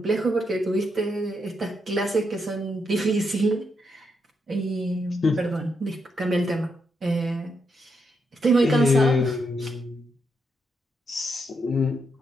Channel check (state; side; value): normal; both; correlation 0.80